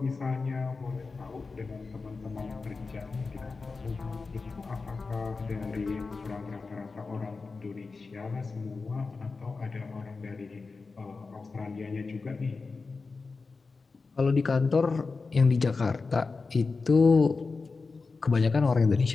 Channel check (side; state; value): right; quieter; 4.2 dB